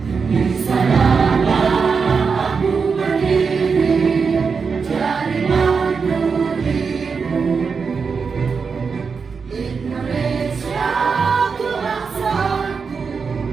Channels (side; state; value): left; quieter; 5.4 dB